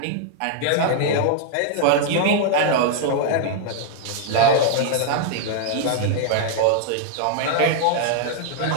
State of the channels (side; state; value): both; different; correlation 0.00